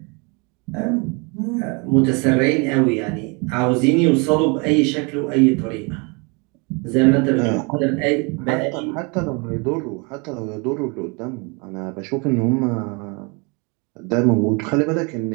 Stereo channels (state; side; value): quieter; left; 31.2 dB